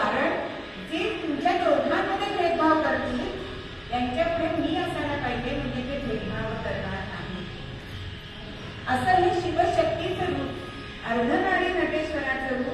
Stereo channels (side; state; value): both; identical; correlation 1.00